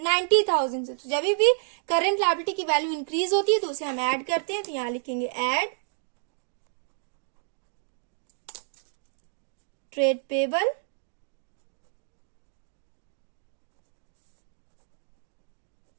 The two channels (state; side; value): silent; left; digital silence